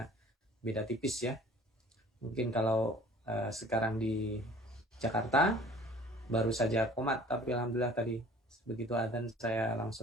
beda tipis ya. Mungkin kalau sekarang di Jakarta baru saja komat, tapi alhamdulillah tadi begitu adzan saya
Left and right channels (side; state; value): both; normal; correlation 0.48